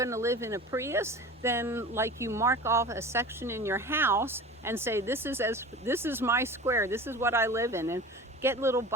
to live in a Prius, then like you mark off a section in your house and say, this is my square, this is what I live in, and get little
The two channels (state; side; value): normal; both; correlation 0.36